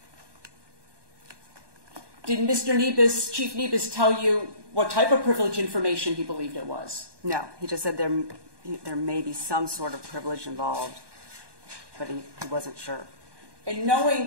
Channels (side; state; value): left; late; 1.2 ms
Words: Did Mr. Nebus, Chief Nebus, tell you what type of privileged information he believed it was? No. He just said there may be some sort of privilege involved, but he wasn't sure. And